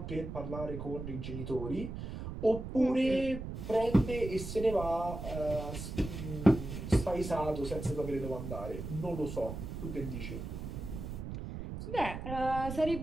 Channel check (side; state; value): right; noise; rumble, 7 dB below the sound